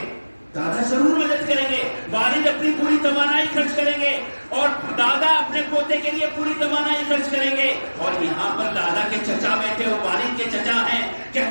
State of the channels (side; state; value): both; inverted; correlation -1.00